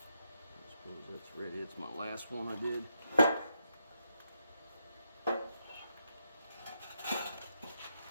suppose that's ready. It's my last one I did.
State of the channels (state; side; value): inverted; both; correlation -0.81